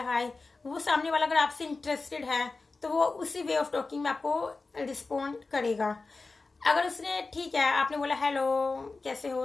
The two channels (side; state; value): right; quieter; 3.8 dB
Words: हाय, वो सामने वाला अगर आपसे इंटरेस्टेड है तो वो उसी वे ऑफ टॉकिंग में आपको रिस्पॉन्ड करेगा। अगर उसने ठीक है, आपने बोला हेलो कैसे हो,